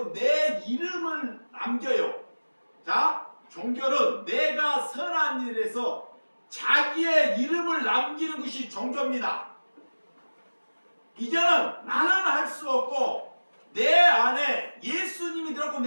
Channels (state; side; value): inverted; both; correlation -1.00